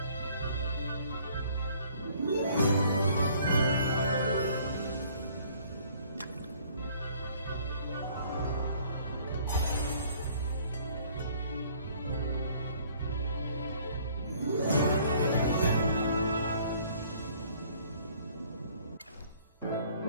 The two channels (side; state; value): both; inverted; correlation -0.57